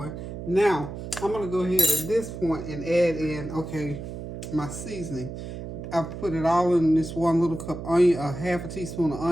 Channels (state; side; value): noise; right; hum, 8 dB below the sound